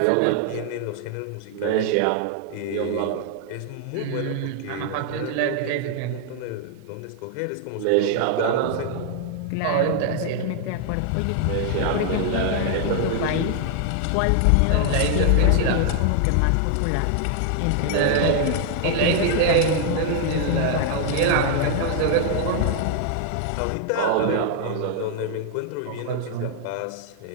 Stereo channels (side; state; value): both; different; correlation 0.00